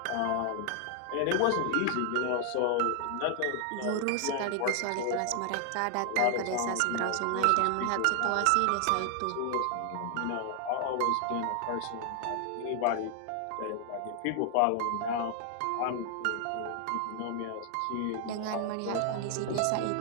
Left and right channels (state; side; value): different; both; correlation 0.00